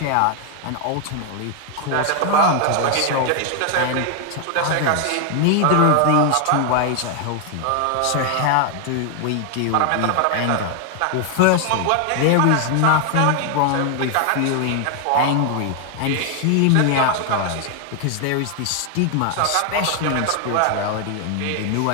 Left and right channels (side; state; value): both; different; correlation 0.00